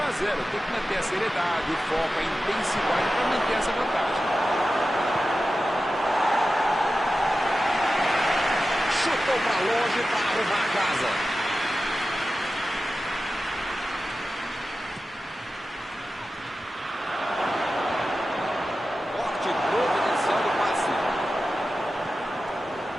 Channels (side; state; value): both; normal; correlation 0.93